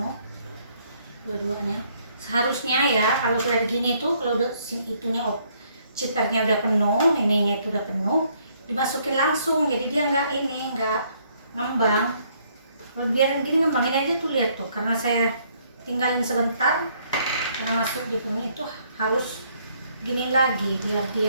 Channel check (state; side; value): inverted; both; correlation -0.67